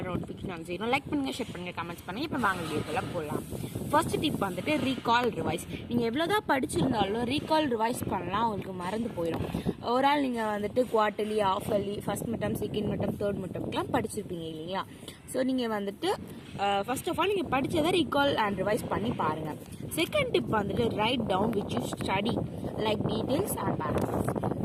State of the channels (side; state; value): both; identical; correlation 1.00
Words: நோட்டிஃபிகேஷன் செய்யணும். லைக் பண்ணுங்கள், ஷேர் பண்ணுங்கள், கமெண்ட்ஸ் பண்ணுங்கள். இப்போ வாங்க வீடியோக்குள்ளே போகலாம். ஃபர்ஸ்ட் டிப் வந்துட்டு ரீகால் ரிவைஸ். நீங்கள் எவ்வளோதான் படிச்சிருந்தாலும் ரீகால் ரிவைஸ் பண்ணலாம், உங்களுக்கு மறந்து போயிடும். ஒரு ஆள் நீங்கள் வந்துட்டு quarterly, half yearly, first midterm, second midterm, third மிட்டம்லாம் படிச்சிருப்பீங்க இல்லைங்களா? ஸோ நீங்கள் வந்துட்டு ஃபர்ஸ்ட் ஆஃப் ஆல் நீங்கள் படித்ததை ரீகால் அண்ட் ரிவைஸ் பண்ணி பாருங்கள். செகண்ட் டிப் வந்துட்டு write down which you study like details and paragraphs.